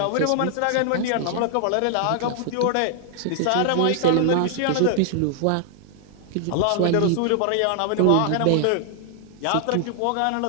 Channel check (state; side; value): different; both; correlation 0.00